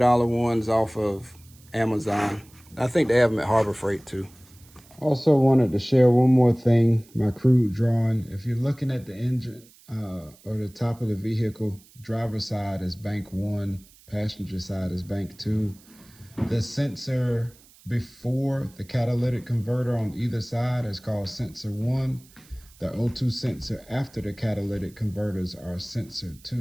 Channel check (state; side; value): noise; right; hiss, 26 dB below the sound